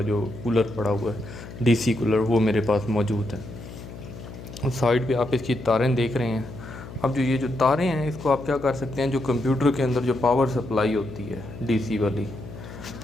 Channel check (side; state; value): left; noise; hum, 13 dB below the sound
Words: जो कूलर पड़ा हुआ है, डीसी कूलर, वो मेरे पास मौजूद है। उस साइड पे आप इसकी तारें देख रहे हैं। अब जो ये जो तारें हैं, इसको आप क्या कर सकते हैं, जो कंप्यूटर के अंदर जो पावर सप्लाई होती है डीसी वाली,